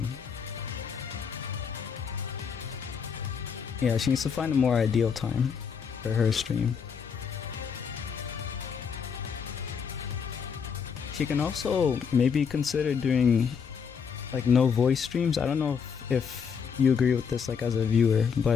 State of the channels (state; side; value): quieter; right; 6.6 dB